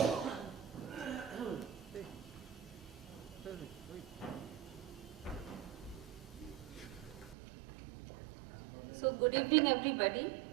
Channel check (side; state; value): left; drops out; at 7.4 s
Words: So good evening everybody,